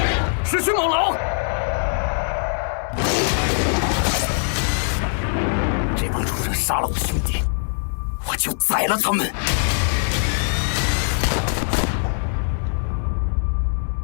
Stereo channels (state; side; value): silent; right; digital silence